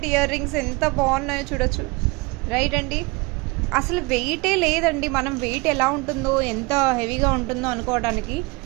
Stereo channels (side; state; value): left; quieter; 26.2 dB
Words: ear rings ఎంత బాగున్నాయో చూడొచ్చు. రైట్ అండి, అసలు వెయిటే లేదండి. మనం వెయిట్ ఎలా ఉంటుందో, ఎంత హెవీగా ఉంటుందో అనుకోవడానికి